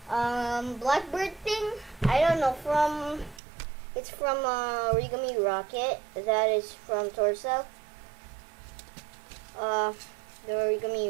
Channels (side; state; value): left; drops out; at 3.4 s